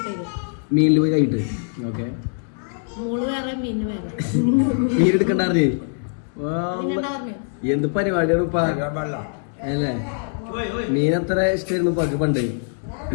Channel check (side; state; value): right; silent; digital silence